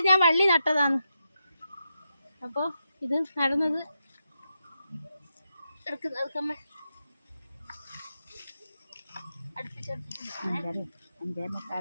ഞാൻ വള്ളി നട്ടതാണ്. അപ്പോൾ ഇത് നടന്നത്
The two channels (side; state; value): both; inverted; correlation -0.86